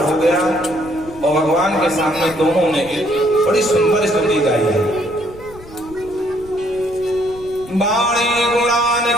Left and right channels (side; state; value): left; noise; rumble, 19 dB below the sound